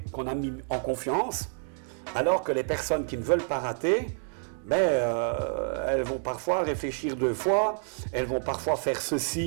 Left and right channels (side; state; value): left; silent; digital silence